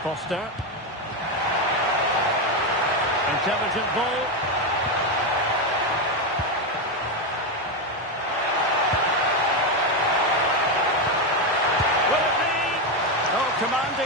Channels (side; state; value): both; normal; correlation 0.09